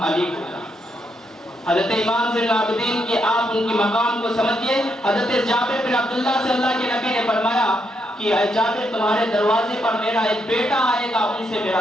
علی ہوگا۔ حضرت امام زین العابدین کی آپ ان کی مقام کو سمجھئے۔ حضرت جابر بن عبداللہ سے اللہ کے نبی نے فرمایا کہ اے جابر تمہارے دروازے پر میرا ایک بیٹا آئے گا، ان سے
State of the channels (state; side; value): normal; both; correlation 0.79